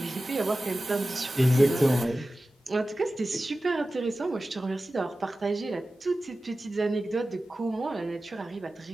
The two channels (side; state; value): both; normal; correlation 0.95